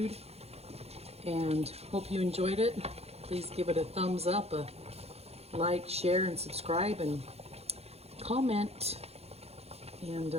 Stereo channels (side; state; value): left; late; 0.30 ms